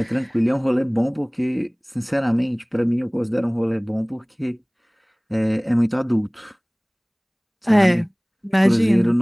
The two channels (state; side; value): identical; both; correlation 1.00